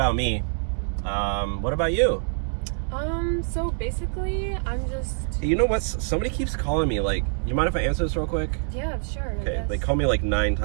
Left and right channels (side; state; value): left; silent; 59 dB below the other